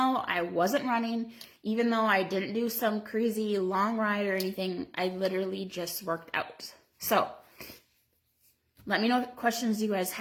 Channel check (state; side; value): identical; both; correlation 1.00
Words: I wasn't running, even though I didn't do some crazy long ride or anything, I literally just worked out. So let me know what questions you guys